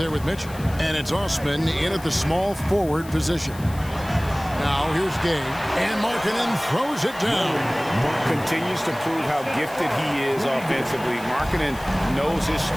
with Mitchell. And it's Osman in at the small forward position. Now here's Gay, and Markkanen throws it down. Continues to prove how gifted he is offensively. Markkanen knows his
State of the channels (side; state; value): left; noise; hiss, 19 dB below the sound